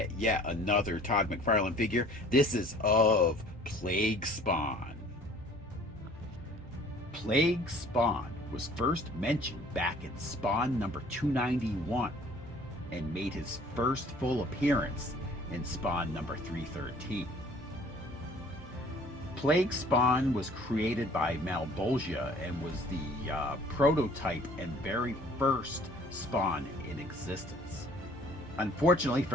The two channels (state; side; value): normal; both; correlation 0.52